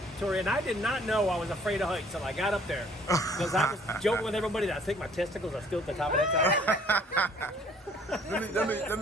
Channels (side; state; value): both; normal; correlation 0.57